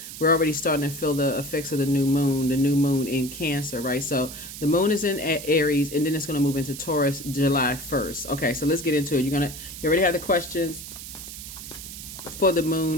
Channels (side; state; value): right; noise; hiss, 11 dB below the sound